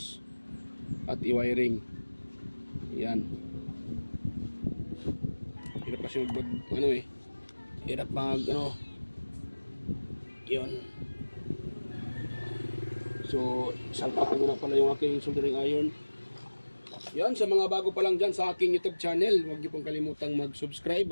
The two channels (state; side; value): inverted; both; correlation -1.00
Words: at i-wiring. Yan. Hirap kasi hirap yun. So salpak ko na pala yung aking soldering iron. Yan, sa mga bago pa lang dyan sa aking YouTube channel, huwag niyo pong kalimutang mag-subscribe